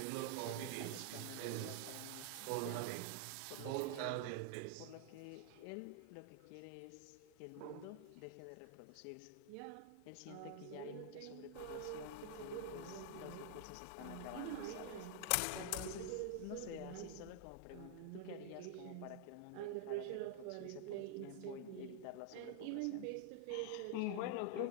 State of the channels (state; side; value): different; both; correlation 0.00